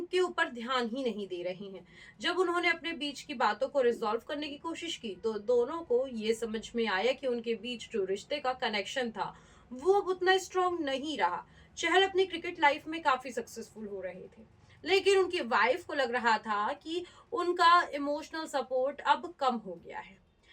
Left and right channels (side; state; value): both; identical; correlation 1.00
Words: ऊपर ध्यान ही नहीं दे रहे हैं। जब उन्होंने अपने बीच की बातों को रिजॉल्व करने की कोशिश की तो दोनों को ये समझ में आया कि उनके बीच जो रिश्ते का कनेक्शन था वो अब उतना स्ट्रांग नहीं रहा। चहल अपनी क्रिकेट लाइफ में काफी सक्सेसफुल हो रहे थे, लेकिन उनकी वाइफ को लग रहा था कि उनका इमोशनल सपोर्ट अब कम हो गया है।